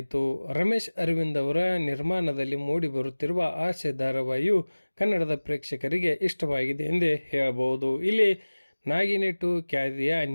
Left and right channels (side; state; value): both; inverted; correlation -1.00